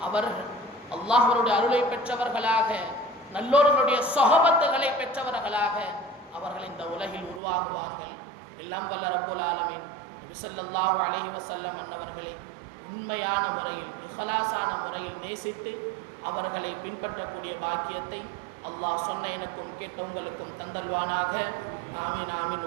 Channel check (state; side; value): drops out; left; at 7.4 s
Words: அவர்கள் அல்லாஹ்வுடைய அருளை பெற்றவர்களாக, நல்லோர்களுடைய சொஹபத்துகளை பெற்றவர்களாக அவர்கள் இந்த உலகில் உருவாகுவார்கள். எல்லாம் வல்ல ரப்புல் ஆலமீன் நபி ஸல்லல்லாஹு அலைஹி வஸல்லம் அன்னவர்களை உண்மையான முறையில், இஹ்லாஸான முறையில் நேசித்து அவர்களை பின்பற்றக்கூடிய பாக்கியத்தை அல்லாஹ் சொன்ன எனக்கும் கேட்ட உங்களுக்கும் தந்தல்வானாக. ஆமீன் ஆமீன்.